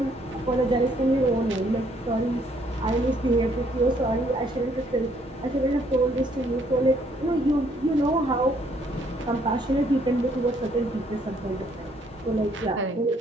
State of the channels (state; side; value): normal; both; correlation 0.67